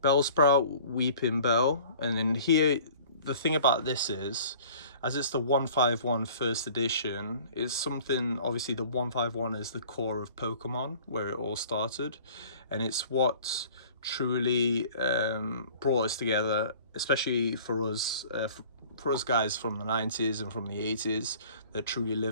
Bellsprout, Weeping Bell, and then here, the thing about this is, as it's the 151 first edition, is something, obviously the 151 is the core of Pokemon, where it all started, and it's what truly brought us together, especially for us guys from the 90s and from the 80s that truly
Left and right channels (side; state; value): both; inverted; correlation -0.48